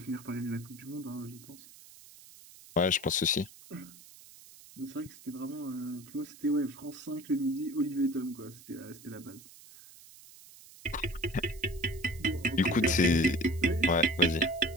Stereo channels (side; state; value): right; noise; hiss, 20 dB below the sound